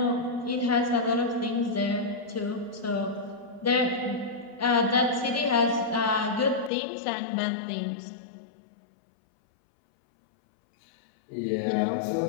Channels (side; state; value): right; drops out; at 6.7 s